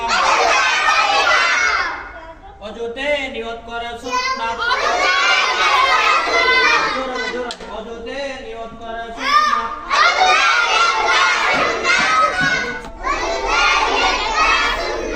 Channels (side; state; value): both; identical; correlation 1.00